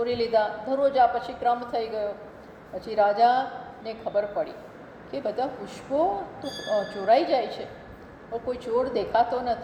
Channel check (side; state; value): both; identical; correlation 1.00